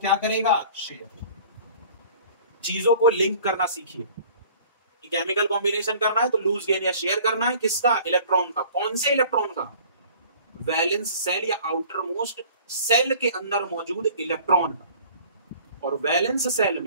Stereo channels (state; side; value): inverted; both; correlation -0.49